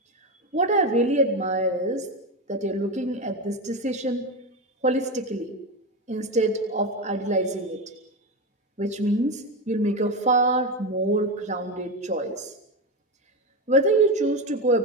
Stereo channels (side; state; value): both; normal; correlation 0.16